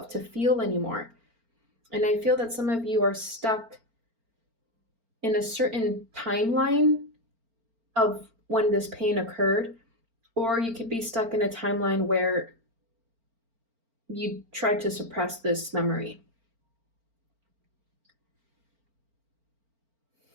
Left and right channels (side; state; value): left; late; 4.4 ms